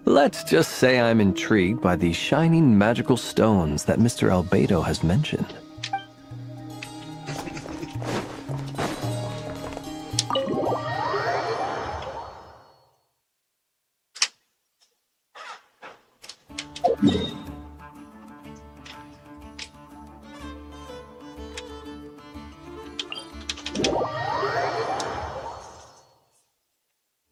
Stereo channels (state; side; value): identical; both; correlation 1.00